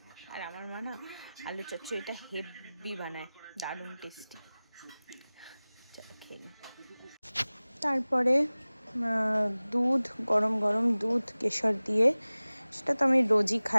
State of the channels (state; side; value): inverted; both; correlation -0.98